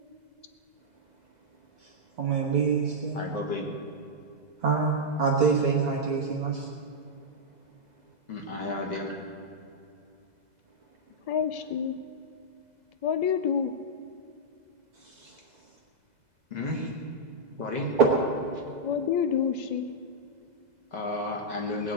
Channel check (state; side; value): late; left; 2.0 ms